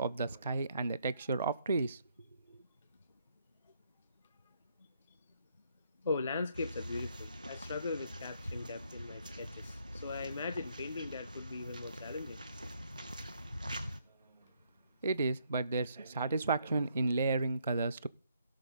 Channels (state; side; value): inverted; both; correlation -0.71